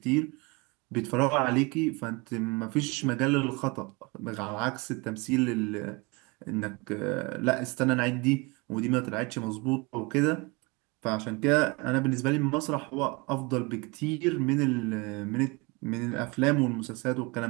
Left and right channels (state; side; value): quieter; left; 26.7 dB